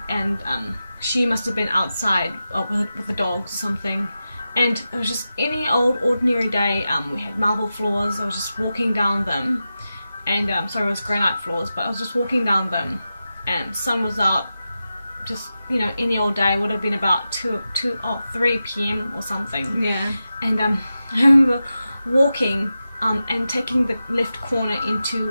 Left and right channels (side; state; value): both; inverted; correlation -0.92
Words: and she must have been outside with the dogs or something, and it was just any old ordinary day. We had marble floors. I was just walking down them, and sorry, it was granite floors, but I was just walking down them, and sun was out. Just, you know, any old day. Would have been about 3 p.m. or something. Yeah. And I remember walking and taking the left corner